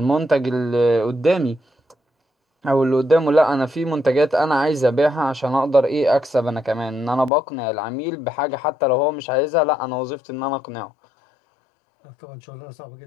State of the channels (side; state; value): right; drops out; at 7.3 s